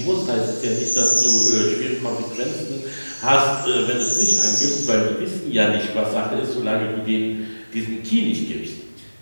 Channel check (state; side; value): inverted; both; correlation -1.00